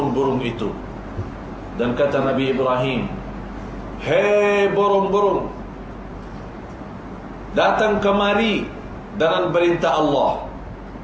itu. Dan kata Nabi Ibrahim, hei burung-burung, datang kemari dengan perintah Allah.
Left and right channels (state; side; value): identical; both; correlation 1.00